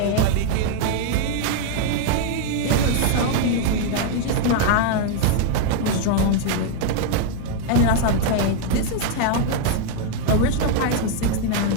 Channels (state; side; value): different; both; correlation 0.00